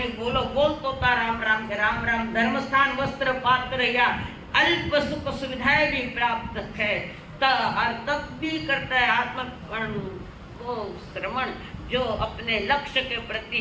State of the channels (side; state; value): both; identical; correlation 1.00